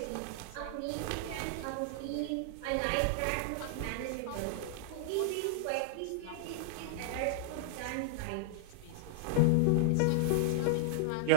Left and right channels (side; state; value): both; different; correlation 0.00